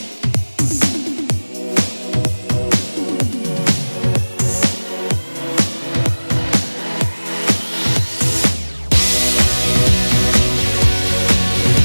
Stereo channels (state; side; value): inverted; both; correlation -1.00